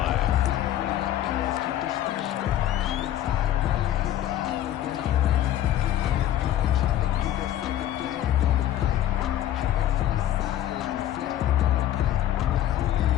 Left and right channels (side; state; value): right; quieter; 12.1 dB